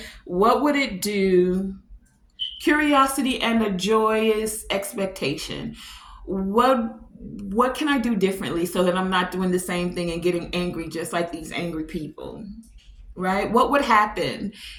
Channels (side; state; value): both; identical; correlation 1.00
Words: What would it do? Curiosity and a joyous expectation. What can I do differently so that I'm not doing the same thing and getting angry just like these angry people? Right? What would happen